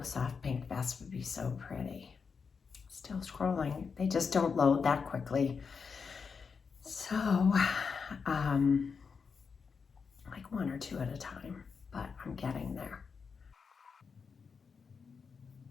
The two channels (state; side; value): quieter; right; 5.6 dB